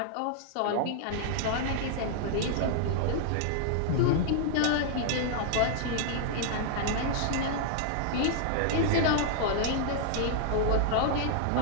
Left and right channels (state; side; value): different; both; correlation -0.01